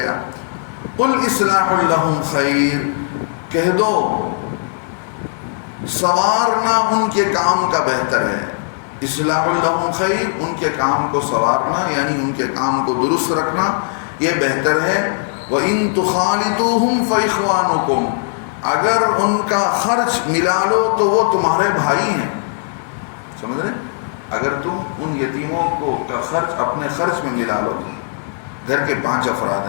قل اصلاح لہم خیر، کہہ دو سنوارنا ان کے کام کا بہتر ہے. اصلاح لہم خیر، ان کے کام کو سنوارنا یعنی ان کے کام کو درست رکھنا یہ بہتر ہے. وَإِن تُخَالِطُوهُمْ فَإِخْوَانُكُمْ، اگر ان کا خرچ ملا لو تو وہ تمہارے بھائی ہیں. سمجھ رہے؟ اگر تم ان یتیموں کو کا خرچ اپنے خرچ میں ملا لو، گھر کے 5 افراد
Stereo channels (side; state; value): right; silent; 62 dB below the other